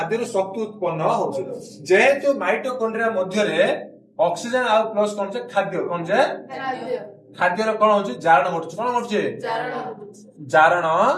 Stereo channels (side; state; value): both; identical; correlation 1.00